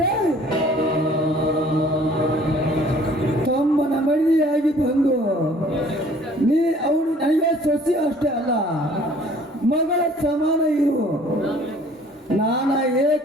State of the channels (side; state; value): both; normal; correlation 0.54